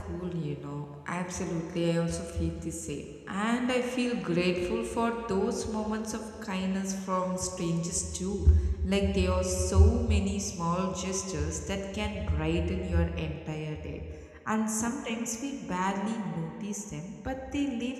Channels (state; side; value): identical; both; correlation 1.00